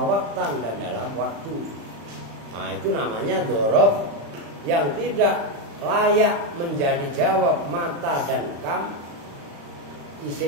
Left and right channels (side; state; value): left; late; 35 ms